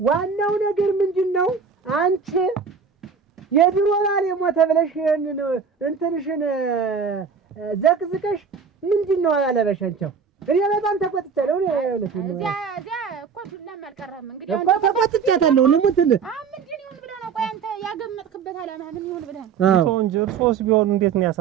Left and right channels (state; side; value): quieter; left; 6.1 dB